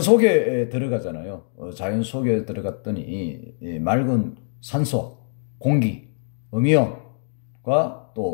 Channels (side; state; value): right; silent; digital silence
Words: 들어가잖아요. 자연 속에 들어갔더니 맑은 산소, 공기, 음이온과